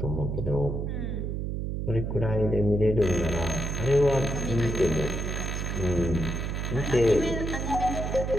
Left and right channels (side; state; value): right; noise; hum, 2 dB below the sound